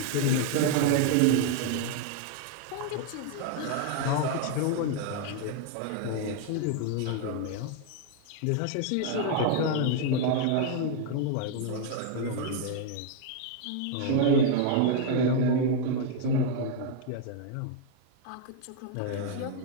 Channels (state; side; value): different; both; correlation 0.00